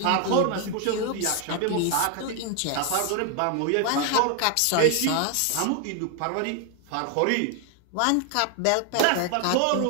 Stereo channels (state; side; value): different; both; correlation 0.00